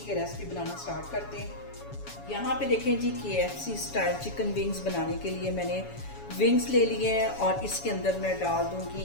ये रेसिपी बनाना स्टार्ट करते हैं। यहाँ पे देखें जी, KFC स्टाइल चिकन विंग्स बनाने के लिए मैंने विंग्स ले लिए हैं और इसके अंदर मैं डाल दूंगी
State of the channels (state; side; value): late; right; 7.1 ms